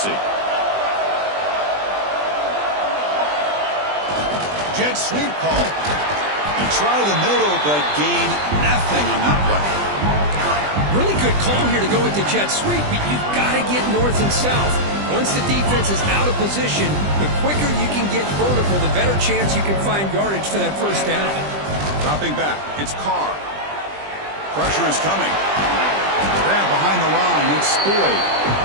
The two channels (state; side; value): late; left; 20 ms